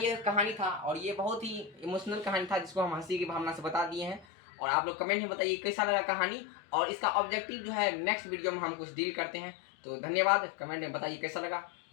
कहानी था, और ये बहुत ही इमोशनल कहानी था जिसको हम हंसी की भावना से बता दिए हैं। और आप लोग कमेंट में बताइए कैसा लगा कहानी, और इसका ऑब्जेक्टिव जो है नेक्स्ट वीडियो में हम कुछ डील करते हैं। तो धन्यवाद, कमेंट में बताइए कैसा लगा,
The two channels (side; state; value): right; drops out; at 4.2 s